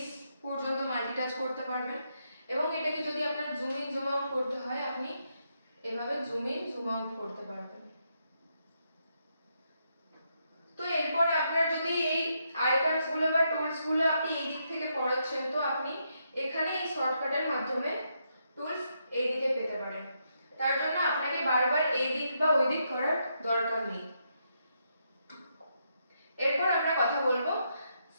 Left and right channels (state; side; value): inverted; both; correlation -0.79